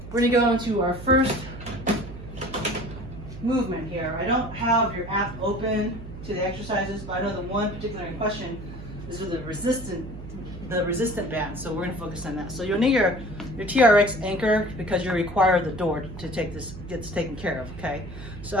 we're gonna go into our first movement here. I don't have your app open to the exercises, but I know the one particular in question is with the resistant band, so we're gonna focus on that. So you'll need your Trx Anchor because you require the door to take this, gets taken care of, okay? So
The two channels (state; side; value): noise; right; hum, 12 dB below the sound